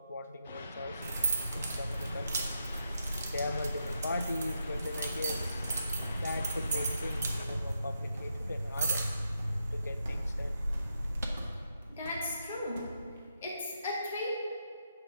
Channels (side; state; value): both; inverted; correlation -0.83